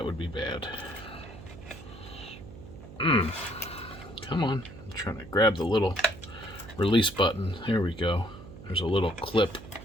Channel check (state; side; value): noise; right; hum, 16 dB below the sound